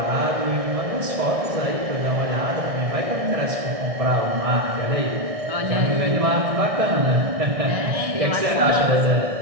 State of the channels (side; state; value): left; late; 1.6 ms